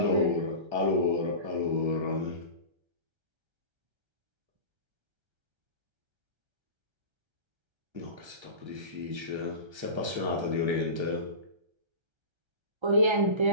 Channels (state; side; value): late; left; 1.3 ms